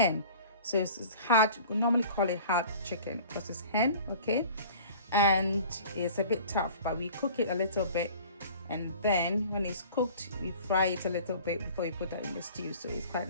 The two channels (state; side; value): inverted; both; correlation -0.45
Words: so it's hard. We normally call it hard chicken because it's hen. Okay, and it's a bit tough, but we cook it a little bit, and then when it's cooked we fry it a little bit before you put that in the stew, so it's